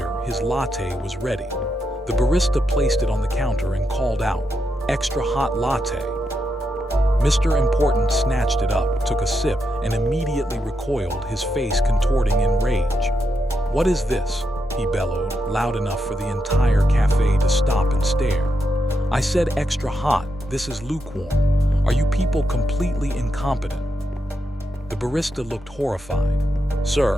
his latte was ready. The barista placed it on the counter and called out, "Extra hot latte." Mr. Important snatched it up, took a sip, and immediately recoiled, his face contorting in rage. "What is this?" he bellowed, loud enough for the entire cafe to stop and stare. I said extra hot, this is lukewarm. Are you people completely incompetent? The barista looked horrified.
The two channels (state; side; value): normal; both; correlation 0.83